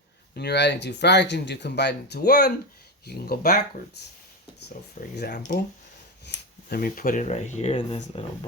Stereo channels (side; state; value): both; normal; correlation 0.14